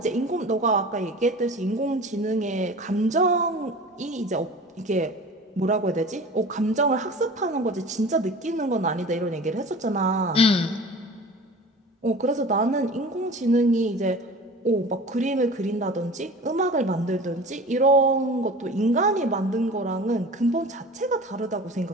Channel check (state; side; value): normal; both; correlation 0.39